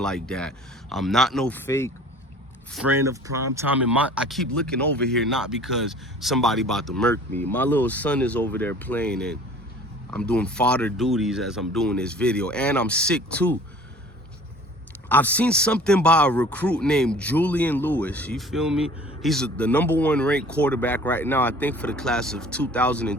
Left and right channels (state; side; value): normal; both; correlation 0.47